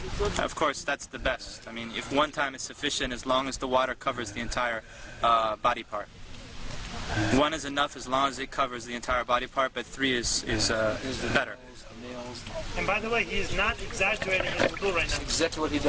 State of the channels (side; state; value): both; identical; correlation 1.00